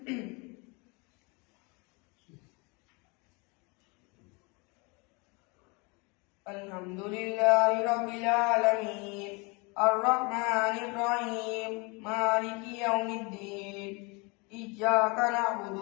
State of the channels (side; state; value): right; quieter; 29.3 dB